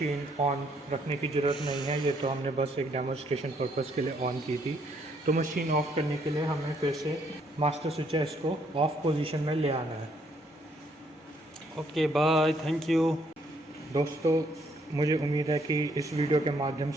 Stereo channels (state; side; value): normal; both; correlation 0.69